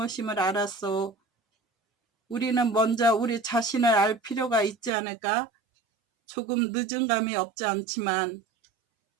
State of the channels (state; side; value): drops out; left; at 4.9 s